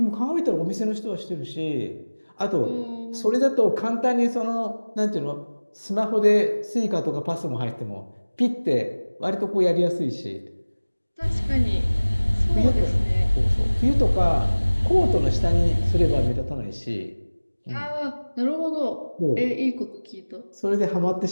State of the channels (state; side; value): inverted; both; correlation -1.00